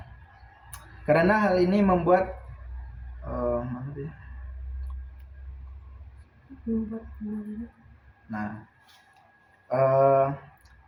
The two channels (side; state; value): both; identical; correlation 1.00